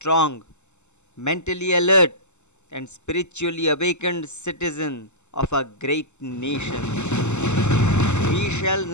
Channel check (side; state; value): right; late; 0.83 ms